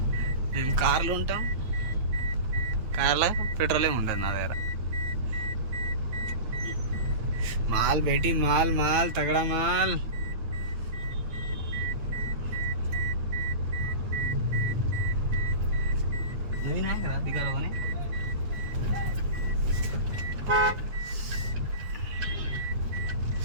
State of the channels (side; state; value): left; late; 8.9 ms